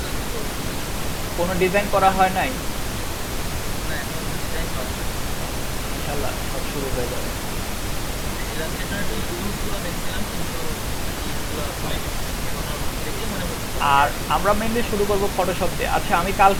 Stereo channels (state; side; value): identical; both; correlation 1.00